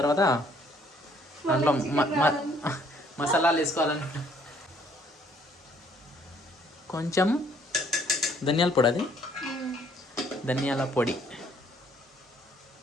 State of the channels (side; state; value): both; normal; correlation 0.63